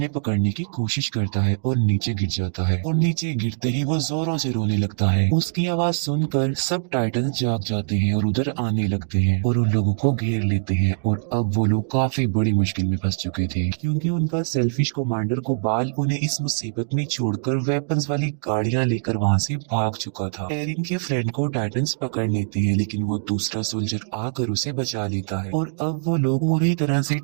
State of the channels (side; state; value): left; silent; digital silence